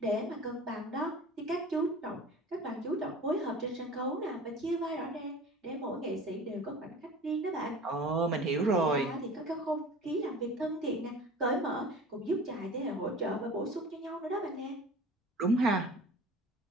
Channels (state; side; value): normal; both; correlation 0.40